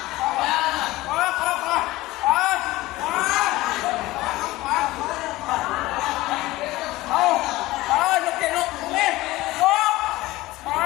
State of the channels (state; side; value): quieter; right; 18.5 dB